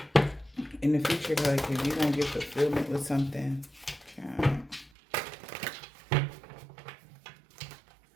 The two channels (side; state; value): left; drops out; at 4.9 s